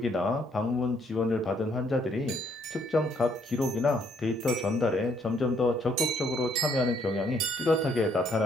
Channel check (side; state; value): both; normal; correlation 0.68